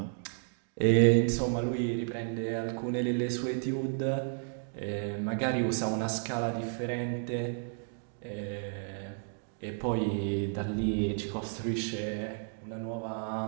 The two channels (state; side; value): silent; left; digital silence